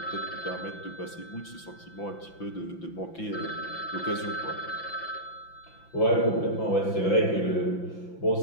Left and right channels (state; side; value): late; right; 5.9 ms